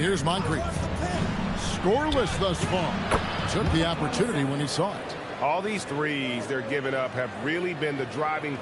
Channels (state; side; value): identical; both; correlation 1.00